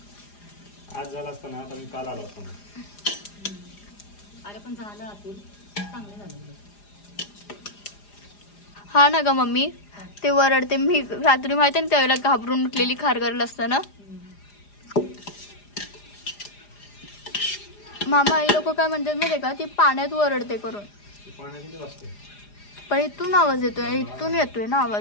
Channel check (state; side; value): late; right; 4.9 ms